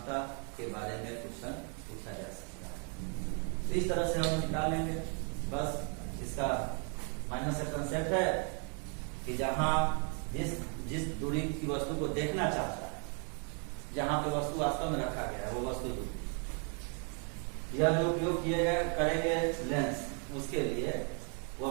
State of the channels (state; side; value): quieter; left; 40.0 dB